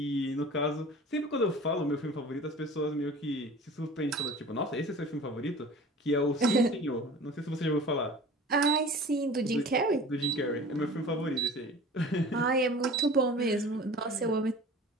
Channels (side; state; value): both; normal; correlation 0.41